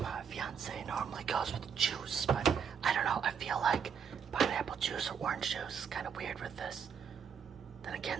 fiance normally goes with juice, but I don't know, I feel like pineapple juice or orange juice is kind of weird with this. Then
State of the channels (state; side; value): quieter; left; 7.0 dB